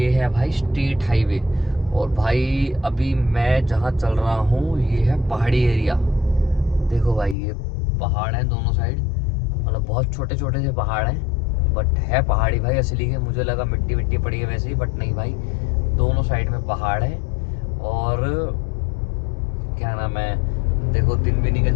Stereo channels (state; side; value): drops out; right; at 7.4 s